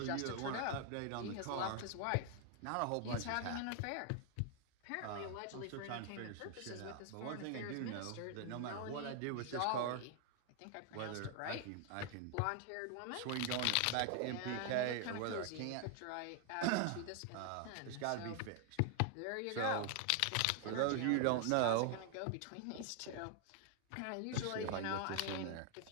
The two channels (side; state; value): both; different; correlation 0.00